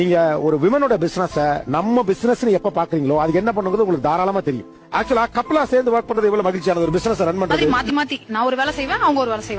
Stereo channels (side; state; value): both; identical; correlation 1.00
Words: ஒரு விமனோட பிசினஸ் நம்ம பிசினஸ் எப்ப பாக்குறீங்களோ அதுக்கு என்ன பண்ணுங்கிறது உங்களுக்கு தாராளமா தெரியும். ஆக்சுவலா கப்புலா சேர்ந்து ஒர்க் பண்றது எவ்வளவு மகிழ்ச்சியான ஒரு பிசினஸ் ரன் பண்றது. மாத்தி மாத்தி நான் ஒரு வேலை செய்வேன், அவங்க ஒரு வேலை